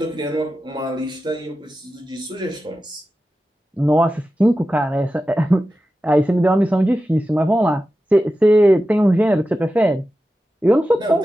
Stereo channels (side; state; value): both; normal; correlation 0.93